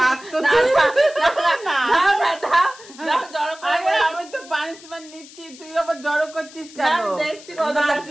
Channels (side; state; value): left; noise; hiss, 20 dB below the sound